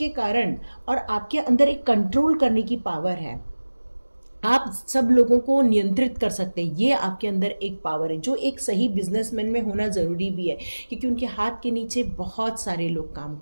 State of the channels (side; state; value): both; inverted; correlation -1.00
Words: कारण और आपके अंदर एक कंट्रोल करने की पावर है। आप सब लोगों को नियंत्रित कर सकते हैं। ये आपके अंदर एक पावर है जो एक सही बिजनेसमैन में होना ज़रूरी भी है, क्योंकि उनके हाथ के नीचे बहुत सारे लोग काम